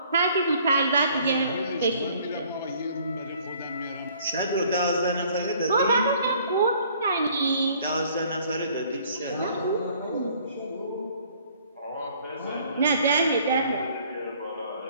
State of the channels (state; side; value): inverted; both; correlation -0.58